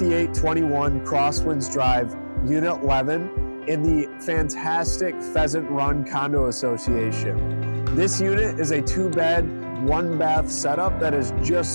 Crosswinds Drive, Unit 11 in the fantastic Pheasant Run Condo Association. This unit is a 2-bed, 1-bath setup that is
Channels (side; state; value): both; inverted; correlation -1.00